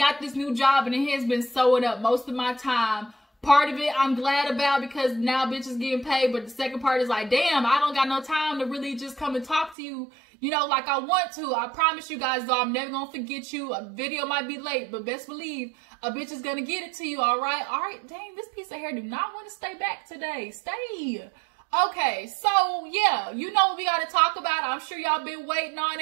this new job and it has been sewing up most of my time. Part of it I'm glad about because now bitches getting paid, but the second part is like, damn, I don't got no time to really just come and talk to you, you know, like I want to. I promise you guys though, I'm never gonna forget you. A video might be late, but best believe a bitch is gonna get it to you, all right? All right, dang, this piece of hair do not want to stay back today. Stay. Okay, so yeah, you know what we gotta talk about. I'm sure y'all been waiting on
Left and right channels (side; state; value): left; drops out; at 9.8 s